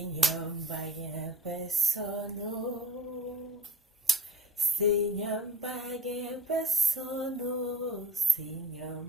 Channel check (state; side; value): normal; both; correlation 0.44